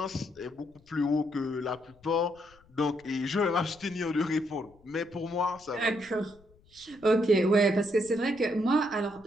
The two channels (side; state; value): left; noise; rumble, 29 dB below the sound